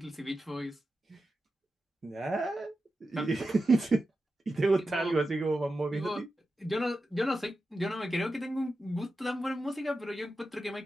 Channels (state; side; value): normal; both; correlation 0.91